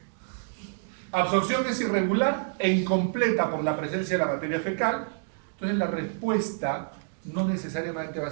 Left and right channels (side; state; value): left; silent; digital silence